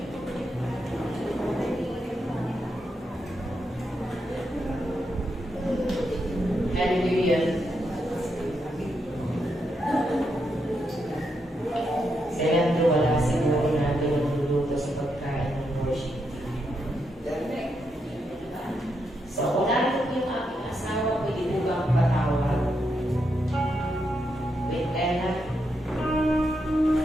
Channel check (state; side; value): normal; both; correlation 0.82